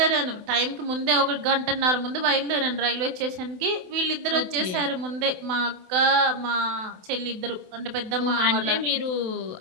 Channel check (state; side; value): late; left; 28 ms